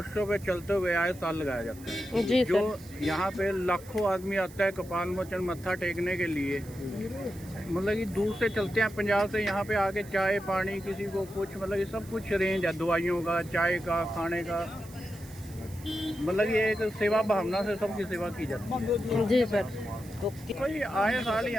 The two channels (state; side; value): noise; right; hiss, 21 dB below the sound